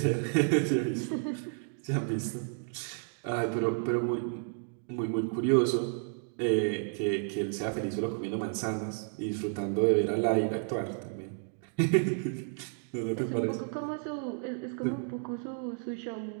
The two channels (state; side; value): silent; left; 57 dB below the other